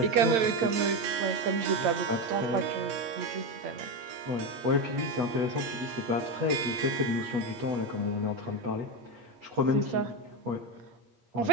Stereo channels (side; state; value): left; late; 8.4 ms